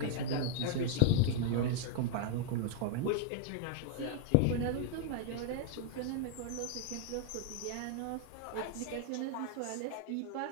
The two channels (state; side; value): different; both; correlation 0.00